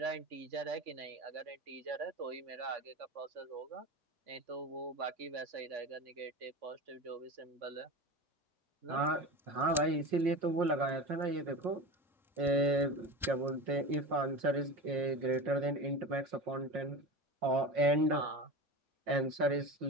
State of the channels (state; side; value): normal; both; correlation 0.29